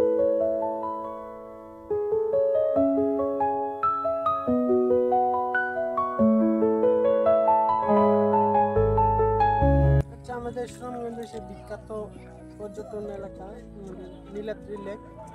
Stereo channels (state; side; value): identical; both; correlation 1.00